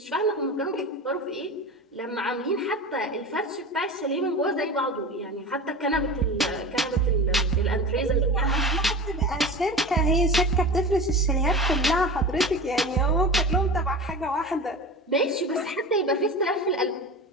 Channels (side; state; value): both; normal; correlation 0.31